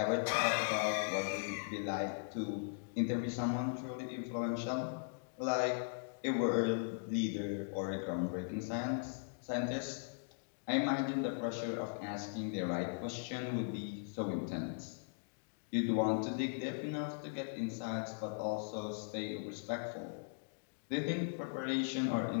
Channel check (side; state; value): right; silent; digital silence